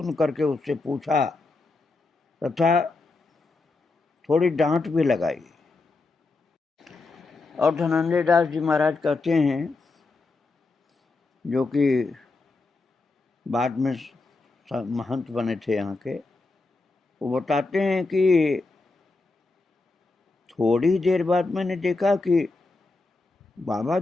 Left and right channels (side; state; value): right; quieter; 3.5 dB